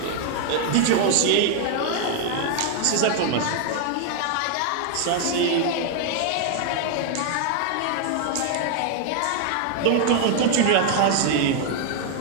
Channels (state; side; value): different; both; correlation 0.00